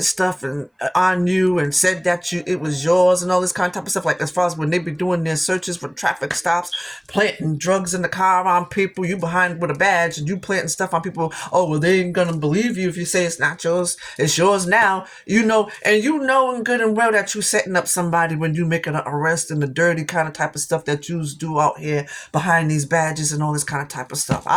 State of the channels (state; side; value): identical; both; correlation 1.00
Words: stuff and on you and said that it was yours and all this kind of type of stuff. Like as far as when they be doing their searches for traffic stops, planting drugs in the car on people, you behind with a badge and you planting stuff on people. Oh, well, they ain't gonna believe you if you say it's not yours. It's yours now. And in good and well that you setting up somebody when you making an arrest and the dirty kind of type of stuff that you do out here behind these badges and all this kind of type of stuff.